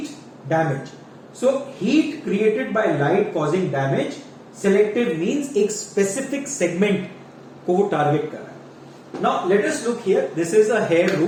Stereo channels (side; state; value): both; identical; correlation 1.00